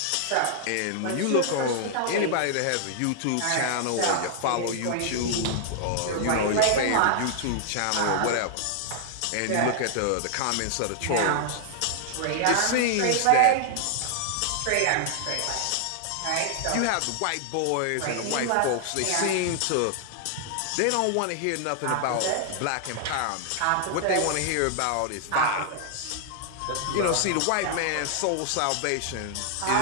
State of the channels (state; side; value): different; both; correlation -0.01